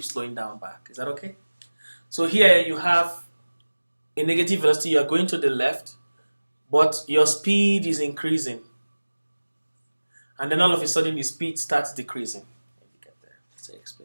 slowing down back. Is that okay? So here you have a negative velocity. You are going to the left, but your speed is increasing. And then all of a sudden, the speed starts decreasing. Let me get there. Let's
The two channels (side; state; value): both; inverted; correlation -1.00